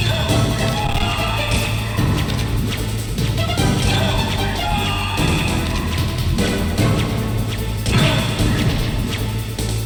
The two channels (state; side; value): identical; both; correlation 1.00